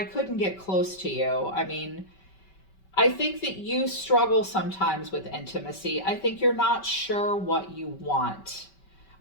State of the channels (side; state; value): right; late; 5.2 ms